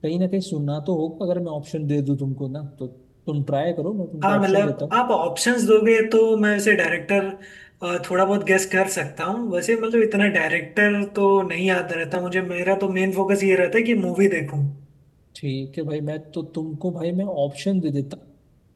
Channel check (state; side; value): identical; both; correlation 1.00